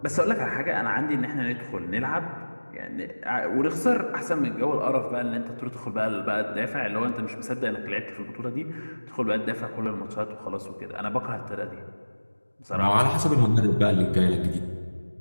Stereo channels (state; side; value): inverted; both; correlation -1.00